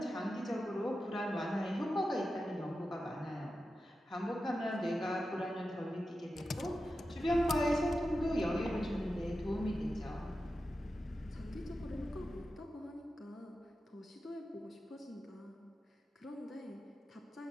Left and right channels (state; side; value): normal; both; correlation 0.91